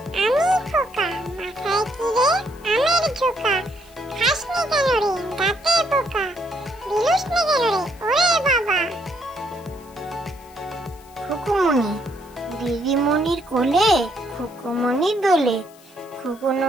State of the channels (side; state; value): left; noise; hiss, 26 dB below the sound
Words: আমি খোকা, মাথায় কি রে, আমের ঝোকা, খাসনি কেন রে, দাঁতে পোকা, বিলুস নে কেন রে, ওরে বাবা। খুকুমনি, দিদিমণির কোলে, খুকুমনি দোলে, খুকু